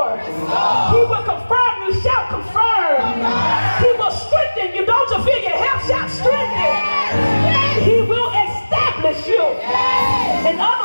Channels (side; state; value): both; inverted; correlation -1.00